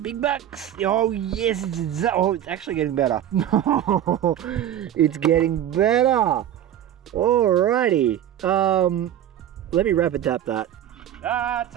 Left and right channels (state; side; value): quieter; left; 11.0 dB